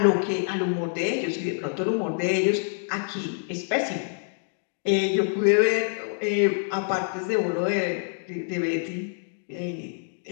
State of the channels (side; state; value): right; silent; 61 dB below the other